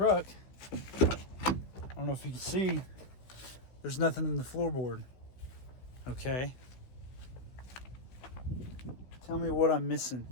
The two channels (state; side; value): late; right; 16 ms